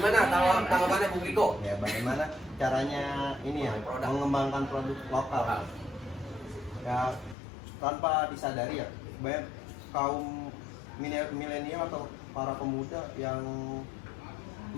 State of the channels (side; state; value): right; drops out; at 7.4 s